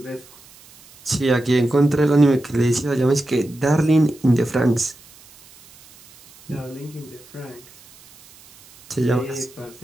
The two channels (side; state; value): right; noise; hiss, 25 dB below the sound